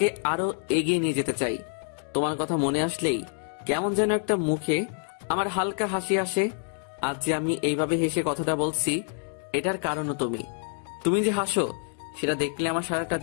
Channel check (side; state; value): right; silent; 56 dB below the other